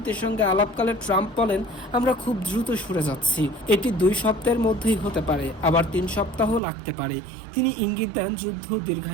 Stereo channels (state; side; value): drops out; left; at 6.6 s